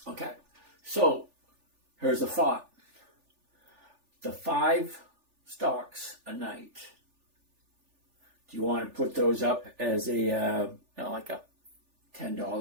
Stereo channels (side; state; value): left; late; 3.4 ms